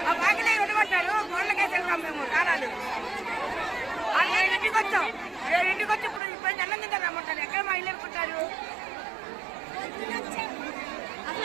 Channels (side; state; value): left; drops out; at 6.2 s